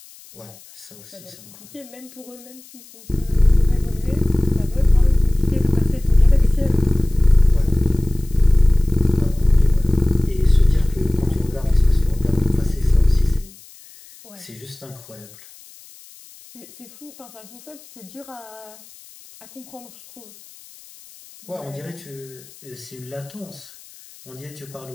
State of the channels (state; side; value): noise; left; hiss, 23 dB below the sound